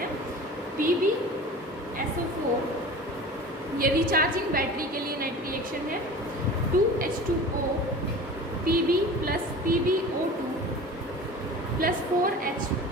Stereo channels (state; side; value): normal; both; correlation 0.37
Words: PbSO4। ये रिचार्जिंग बैटरी के लिए नेट रिएक्शन है 2H2O Pb plus PbO2 plus 4H